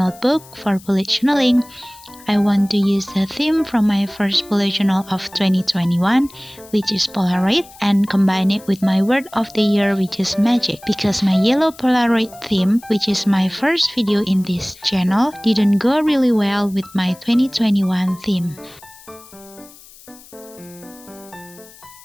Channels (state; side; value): noise; left; hiss, 22 dB below the sound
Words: for bullet journaling. I want to use the theme from my first bullet journal of 2021, which is polaroid, and combine it with my word of the year, which is magic, because my yellow polaroid theme, which is my first video in this channel, didn't go really well with my 2021 theme.